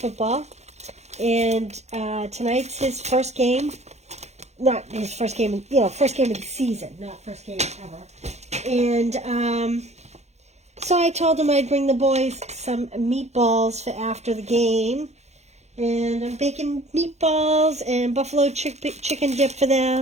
and tonight's his first game. Not his first game, first game of the season, not first game ever. And so I told him I'd bring the boys some meatballs for after the game. And I'm baking meatballs and buffalo chicken dip for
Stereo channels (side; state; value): left; late; 0.32 ms